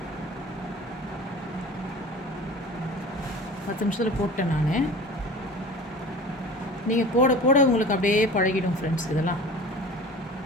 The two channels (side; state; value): both; normal; correlation 0.38